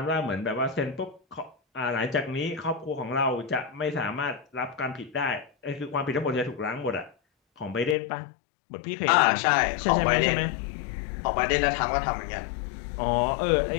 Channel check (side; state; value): right; drops out; at 8.0 s